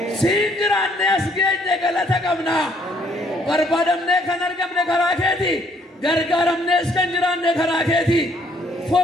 Siin jiraannee as geenye galata qabna. Barbaadamnee kan argamne karaa keeti. Gargaaramnees kan jiraanne karaa keeti.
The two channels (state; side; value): normal; both; correlation 0.65